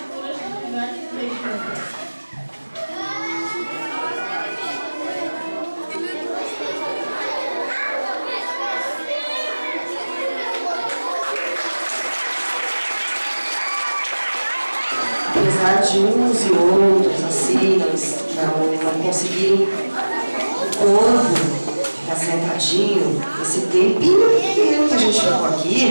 de gigantes beijando. apesar de uns e outros, assim, não conseguirem o corpo ficar sentadinho, esse tempinho pequeno que a gente ficou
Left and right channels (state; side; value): inverted; both; correlation -1.00